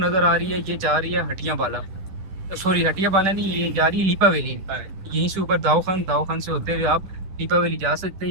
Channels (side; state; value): left; late; 10 ms